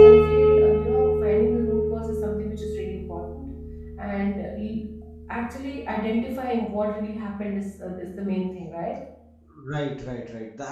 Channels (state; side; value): identical; both; correlation 1.00